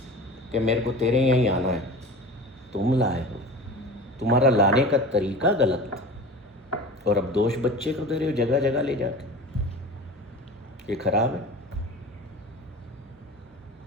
कि मेरे को तेरे यहीं आना है, तुम लाए हो, तुम्हारा लाने का तरीका गलत था, और अब दोष बच्चे को दे रहे हो जगह जगह ले जाके। ये खराब है।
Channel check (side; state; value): both; normal; correlation 0.35